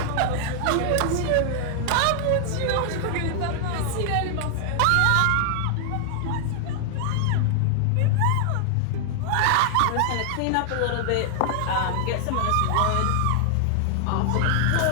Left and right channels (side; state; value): both; different; correlation 0.00